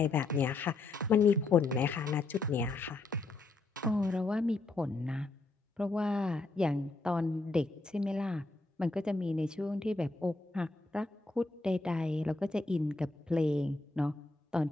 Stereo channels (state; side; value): quieter; right; 3.4 dB